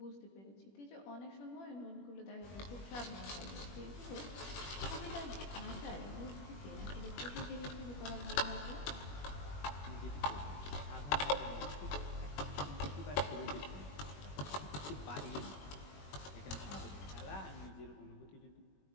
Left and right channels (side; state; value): right; late; 21 ms